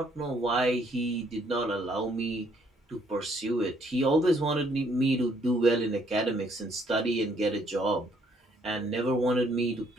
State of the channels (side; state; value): both; normal; correlation 0.67